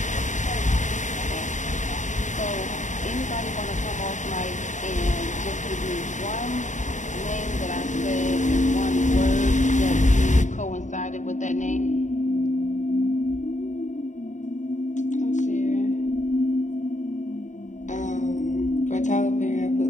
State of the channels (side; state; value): right; late; 0.36 ms